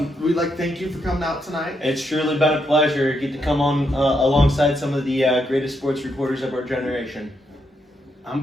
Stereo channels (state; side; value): normal; both; correlation 0.79